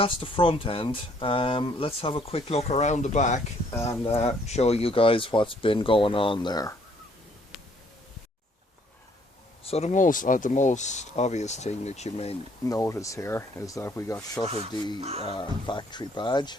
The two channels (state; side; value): normal; both; correlation 0.64